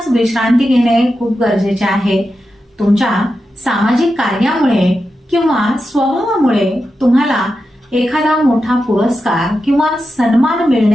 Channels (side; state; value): both; normal; correlation 0.90